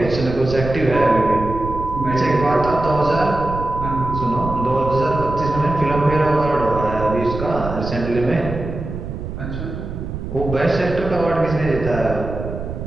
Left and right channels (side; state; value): right; noise; rumble, 7 dB below the sound